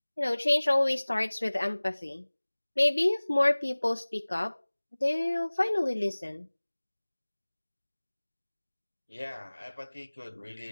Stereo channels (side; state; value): both; inverted; correlation -1.00